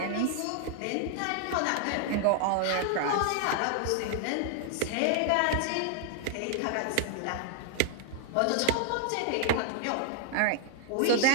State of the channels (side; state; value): both; different; correlation 0.00